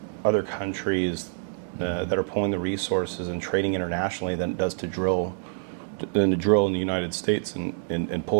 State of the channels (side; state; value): left; silent; digital silence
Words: other countries that are pulling the resources and trading internationally than it does to drill in the United States and